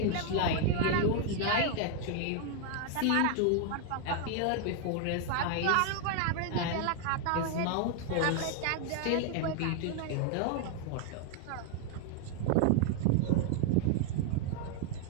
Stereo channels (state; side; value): different; both; correlation 0.00